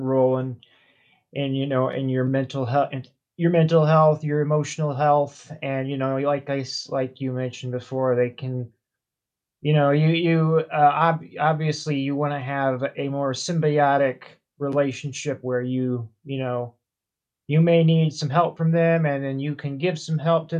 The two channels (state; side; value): identical; both; correlation 1.00